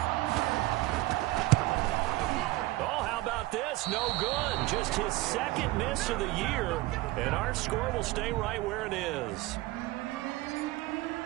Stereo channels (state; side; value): quieter; left; 18.6 dB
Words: Oh, how about this? No good. Just his 2nd miss of the year. And our score will stay right where it is.